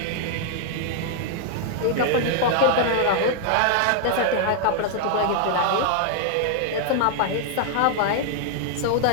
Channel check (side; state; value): both; different; correlation 0.00